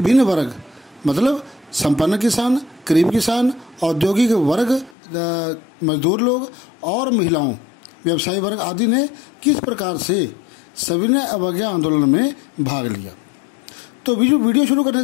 वर्ग, मतलब संपन्न किसान, गरीब किसान, औद्योगिक वर्ग, मजदूर लोग और महिलाओं, व्यवसायी वर्ग आदि ने किस प्रकार से सविनय अवज्ञा आंदोलन में भाग लिया। तो वीडियो शुरू करने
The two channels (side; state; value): right; drops out; at 5.0 s